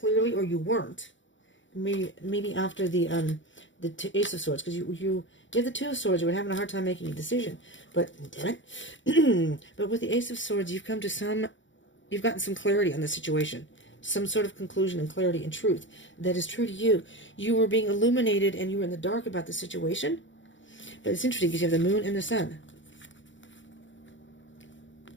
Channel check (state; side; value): late; right; 0.55 ms